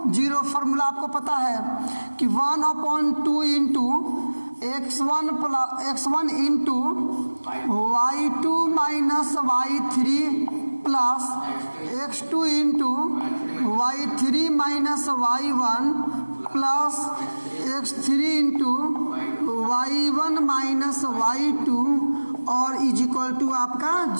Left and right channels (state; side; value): inverted; both; correlation -1.00